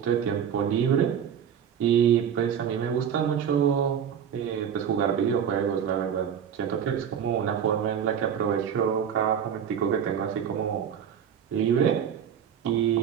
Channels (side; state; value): left; quieter; 8.4 dB